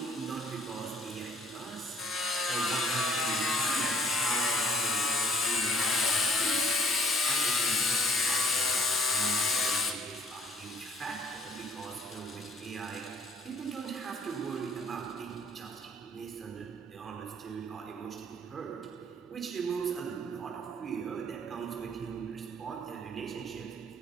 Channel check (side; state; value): both; normal; correlation 0.59